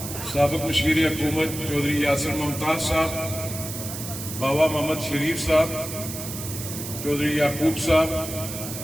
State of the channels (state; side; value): noise; right; hiss, 8 dB below the sound